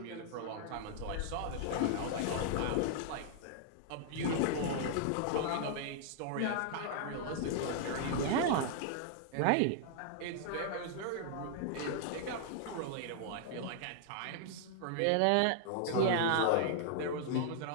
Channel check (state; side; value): different; both; correlation -0.01